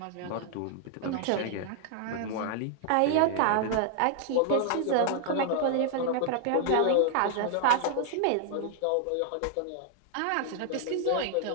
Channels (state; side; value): different; both; correlation 0.00